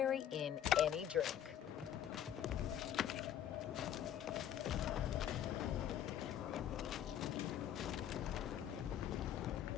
in any drink.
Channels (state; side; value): quieter; right; 10.3 dB